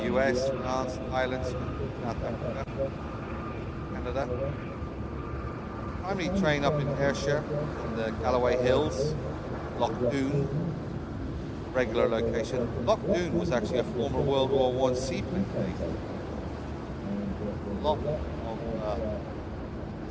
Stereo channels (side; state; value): both; identical; correlation 1.00